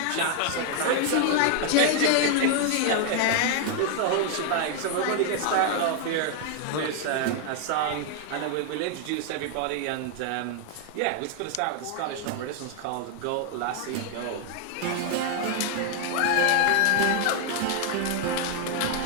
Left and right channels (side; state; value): both; different; correlation 0.00